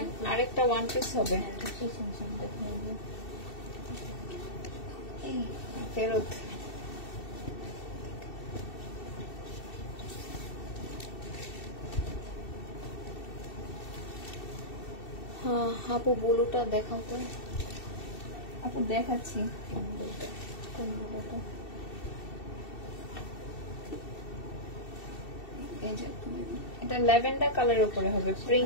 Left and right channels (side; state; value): right; late; 2.7 ms